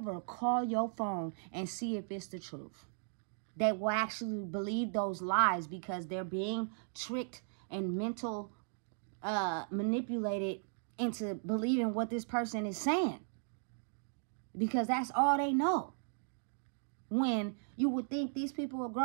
call your phone and see if it's the truth. They will actually believe those lies, because they're being tricked and manipulated into believing what this person is saying, because that's all they know. When you would think these people are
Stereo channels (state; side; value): silent; left; digital silence